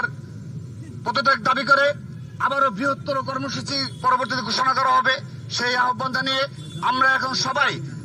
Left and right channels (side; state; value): both; identical; correlation 1.00